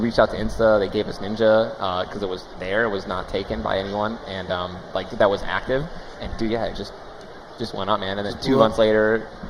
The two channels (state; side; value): identical; both; correlation 1.00